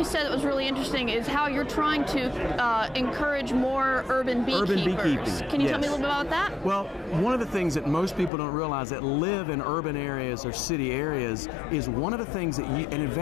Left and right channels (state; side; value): drops out; right; at 8.3 s